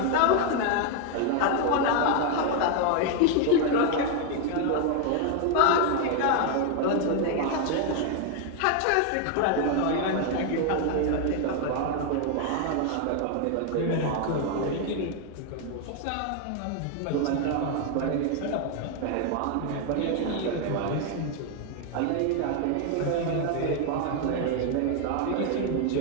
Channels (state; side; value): different; both; correlation 0.01